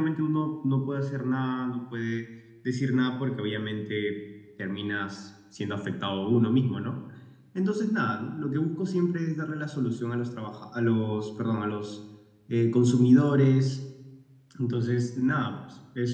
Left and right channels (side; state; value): both; identical; correlation 1.00